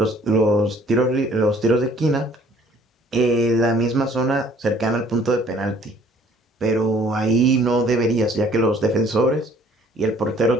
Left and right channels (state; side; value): normal; both; correlation 0.57